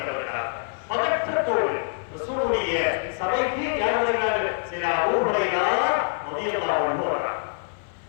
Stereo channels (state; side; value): silent; right; 62 dB below the other